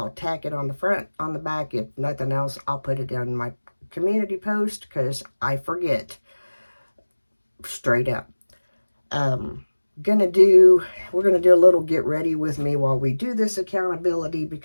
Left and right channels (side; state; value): both; inverted; correlation -1.00